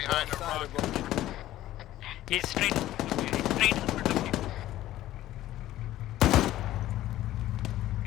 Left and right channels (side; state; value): right; quieter; 14.4 dB